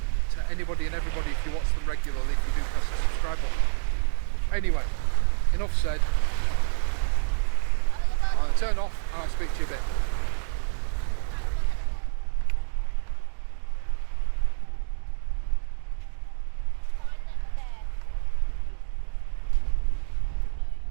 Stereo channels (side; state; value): left; silent; 60 dB below the other